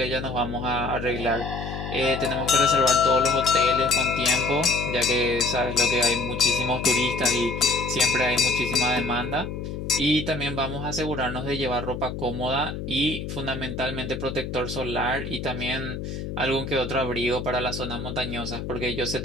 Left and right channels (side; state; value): left; noise; hum, 6 dB below the sound